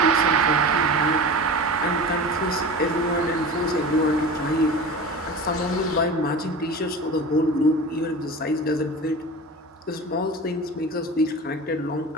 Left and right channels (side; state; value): both; normal; correlation 0.32